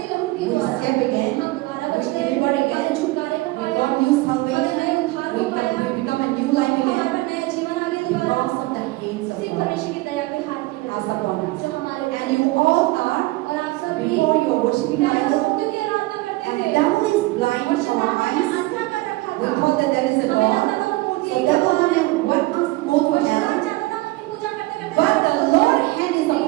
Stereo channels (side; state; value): left; quieter; 20.7 dB